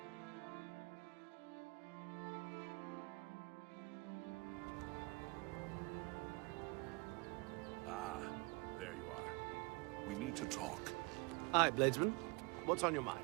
Ah, there you are. We need to talk. Aye, Bladesman. What's on your mind?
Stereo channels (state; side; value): quieter; left; 28.0 dB